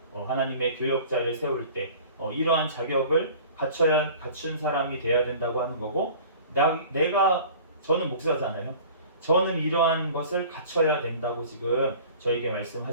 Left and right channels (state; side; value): inverted; both; correlation -0.45